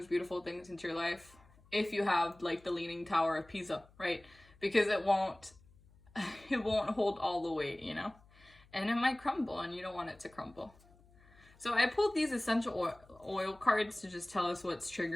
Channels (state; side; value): noise; left; hum, 27 dB below the sound